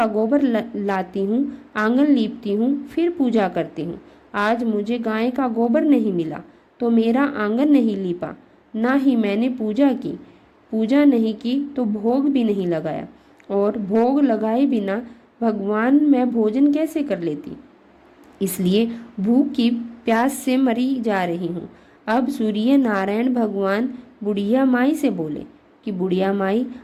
गोबर लाती हूँ, आंगन लीपती हूँ, फिर पूजा करती हूँ। आज मुझे गाय का गोबर नहीं मिला तो मेरा आंगन नहीं लीपा, ना ही मैंने पूजा की। पूजा नहीं की तो भोग भी नहीं लगाया, और भोग लगाए बिना भगवान मैं भोजन कैसे कर लेती। इसलिए भूख की प्यास से मरी जा रही हूँ। अब सूर्य नारायण भगवान बुढ़िया माई से बोले कि बुढ़िया माई,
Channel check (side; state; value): both; identical; correlation 1.00